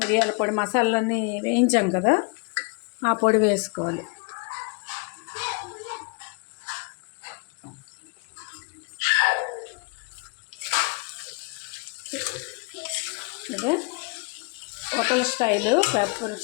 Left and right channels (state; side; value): quieter; right; 32.5 dB